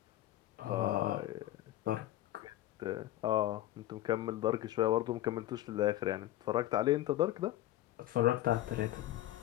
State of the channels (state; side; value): quieter; right; 14.5 dB